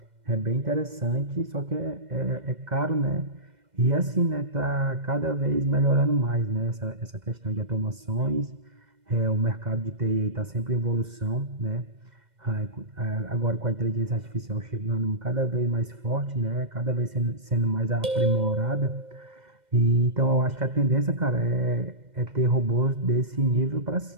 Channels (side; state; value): left; late; 2.1 ms